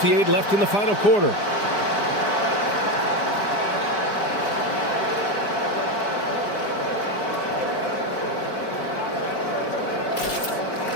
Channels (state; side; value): late; right; 4.9 ms